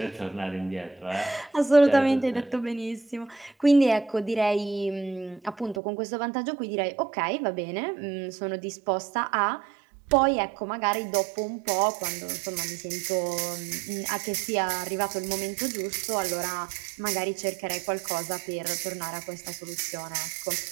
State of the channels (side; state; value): left; drops out; at 5.8 s